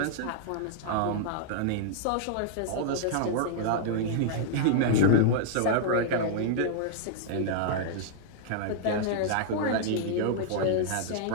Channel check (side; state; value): both; different; correlation -0.01